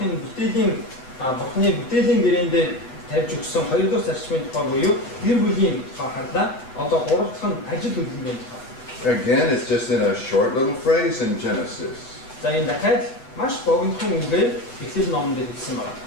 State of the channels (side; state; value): right; late; 7.8 ms